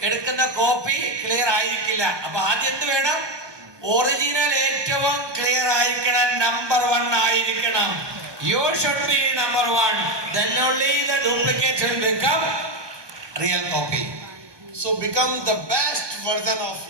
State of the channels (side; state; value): left; late; 1.2 ms